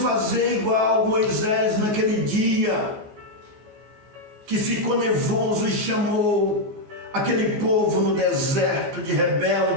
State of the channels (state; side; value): late; left; 14 ms